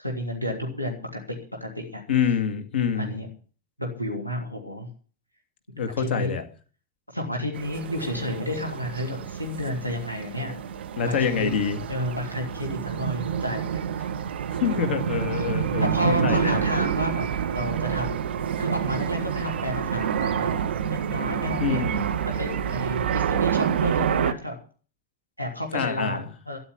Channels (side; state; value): both; inverted; correlation -0.35